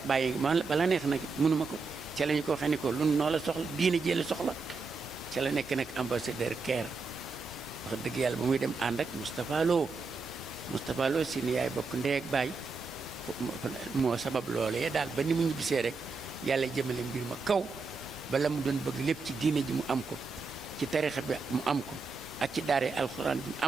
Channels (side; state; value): left; quieter; 4.2 dB